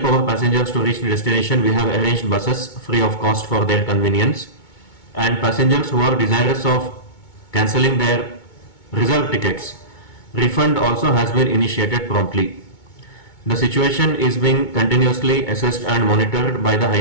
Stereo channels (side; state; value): right; late; 2.2 ms